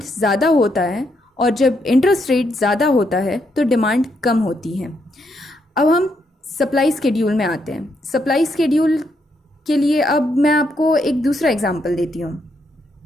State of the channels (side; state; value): both; normal; correlation 0.77